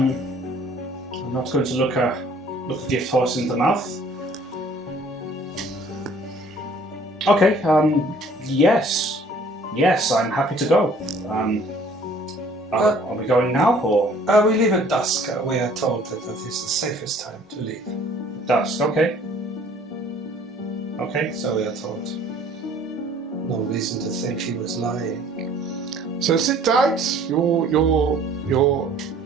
not going to look a gift horse in the mouth." Okay. Yes, I'm happy to go. Are we going now or We leave at dusk. We are told that is the safest time to leave. dusk? Okay. Okay. So we are told. No reason to think she was lying. So sit tight. Your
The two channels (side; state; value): both; normal; correlation 0.55